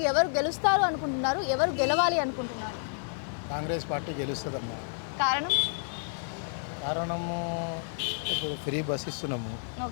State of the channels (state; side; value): silent; right; 58 dB below the other